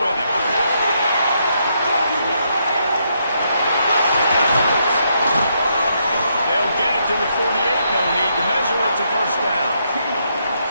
him. To the 48, no need to measure it to 1st down.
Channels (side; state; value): both; inverted; correlation -0.77